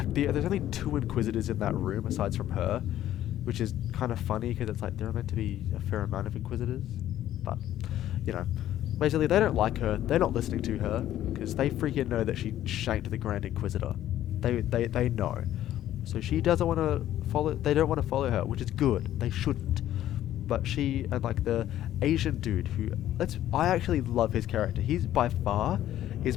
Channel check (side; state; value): right; quieter; 12.5 dB